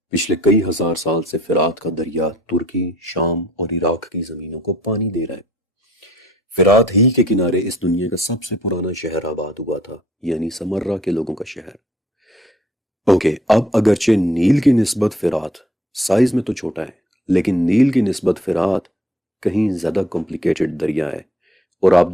پچھلے کئی ہزار سال سے فرات کا دریا ترکی، شام اور عراق کی زمینوں کو پانی دے رہا ہے۔ فرات ہی کے کنارے اس دنیا کا سب سے پرانا شہر آباد ہوا تھا، یعنی سمرہ کے لوگوں کا شہر۔ اب اگرچہ نیل کی نسبت فرات سائز میں تو چھوٹا ہے، لیکن نیل کی نسبت فرات کہیں زیادہ کمپلیکیٹڈ دریا ہے، اور آپ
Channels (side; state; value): both; normal; correlation 0.60